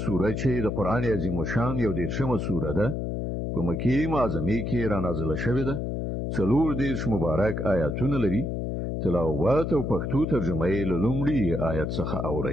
سوره چې د قران عظیم شان یو 13مه سوره ده په مکی معظمه کې را نازله شوې ده. 40 مبارک آیاتونه لري. تلاوت او پښتو ترجمه یې له لومړي آیت څخه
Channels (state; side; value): noise; left; hum, 2 dB below the sound